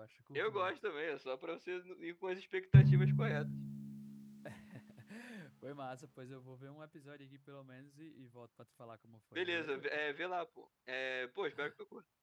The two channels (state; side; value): identical; both; correlation 1.00